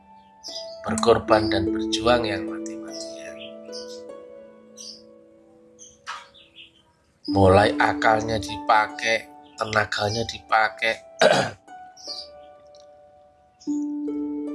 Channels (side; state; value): both; identical; correlation 1.00